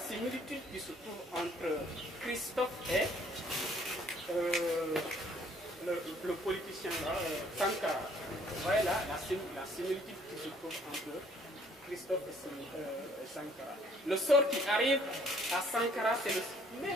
qui se trouve entre Christophe et le politicien là, Sankara. Vous voyez là la similitude qui se trouve entre Christophe et Sankara. Le sort qui arrive à Sankara, c'est le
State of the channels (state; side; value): normal; both; correlation 0.61